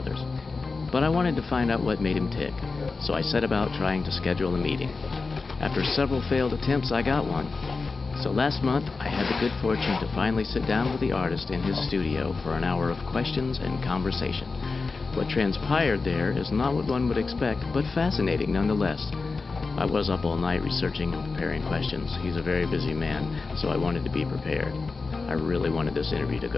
But I wanted to find out what made him tick, so I set about trying to schedule a meeting. After several failed attempts, I got one. So last month, I had the good fortune to finally sit down with the artist in his studio for an hour of questions and conversation. What transpired there is not what one would expect, but fascinating nonetheless. I was up all night researching and preparing questions. He's a very busy man, so I wanted to be prepared. I really wanted this interview to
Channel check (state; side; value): quieter; right; 4.2 dB